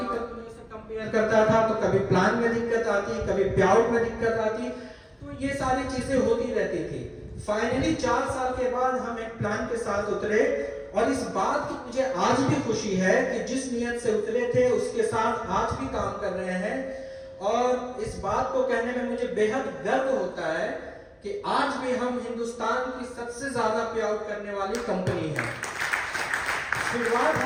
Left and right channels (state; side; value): identical; both; correlation 1.00